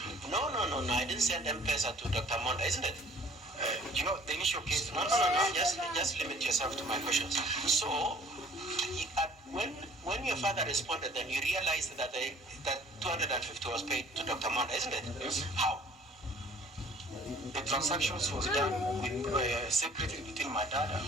no, I didn't send M-Pesa to Dr. Monda, isn't it? The initial case. No. Just limit yourself to my questions. So, when your father responded, then you realized that that 250 was paid to Dr. Monda, isn't it? Yes. How? The transactions was done with secretly between my dad and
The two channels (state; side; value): normal; both; correlation 0.53